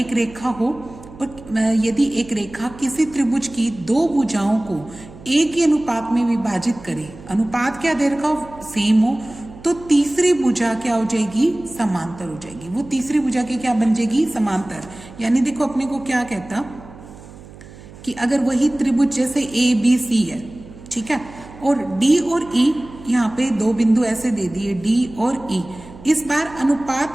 रेखा हो और यदि एक रेखा किसी त्रिभुज की दो भुजाओं को एक ही अनुपात में विभाजित करे, अनुपात क्या दे रखा हो, सेम हो, तो तीसरी भुजा क्या हो जाएगी, समांतर हो जाएगी। वो तीसरी भुजा की क्या बन जाएगी, समांतर। यानी देखो अपने को क्या कहता कि अगर वही त्रिभुज जैसे ए बी सी है, ठीक है, और डी और ई यहाँ पे दो बिंदु ऐसे दे दिए डी और ई, इस बार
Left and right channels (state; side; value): noise; right; hum, 18 dB below the sound